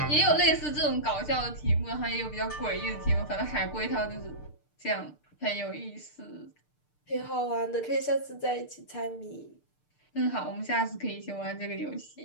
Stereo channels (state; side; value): late; right; 6.7 ms